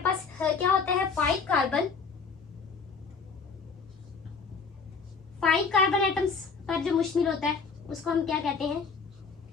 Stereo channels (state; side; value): quieter; right; 5.2 dB